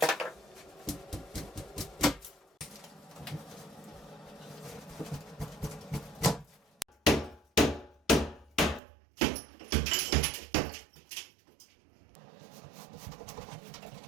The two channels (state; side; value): drops out; left; at 8.8 s